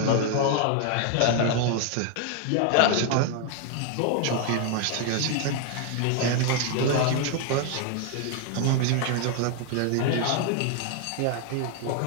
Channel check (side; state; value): both; different; correlation 0.00